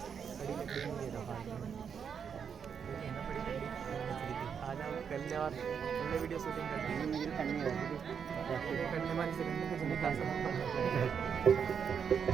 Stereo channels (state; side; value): quieter; left; 7.1 dB